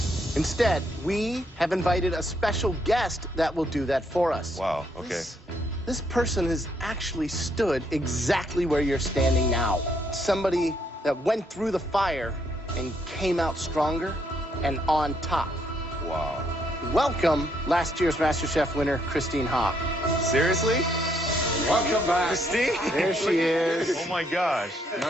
Instead, we have invited a special guest that will do that for us. Wow, okay. This person has actually stood exactly where you're standing now. Somebody that went through the fire and came out stronger and on top. Wow. Welcome, last year's MasterChef winner, Christine Ha. Seriously? Welcome back. Christine? There she is. Oh my gosh.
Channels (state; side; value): normal; both; correlation 0.72